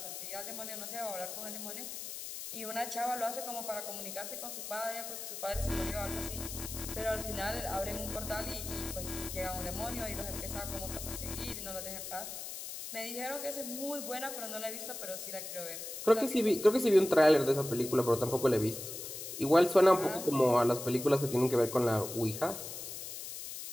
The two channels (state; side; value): noise; left; hiss, 8 dB below the sound